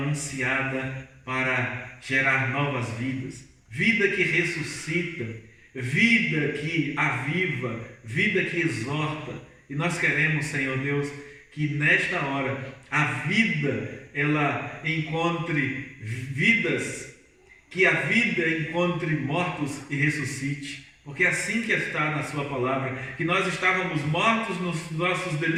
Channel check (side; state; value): both; identical; correlation 1.00